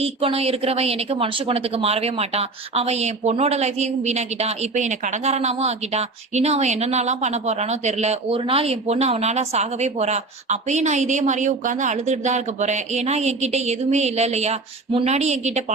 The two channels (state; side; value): quieter; left; 3.5 dB